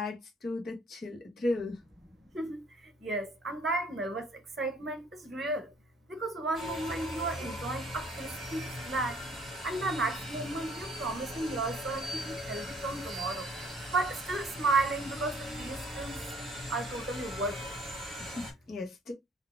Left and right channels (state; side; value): normal; both; correlation 0.59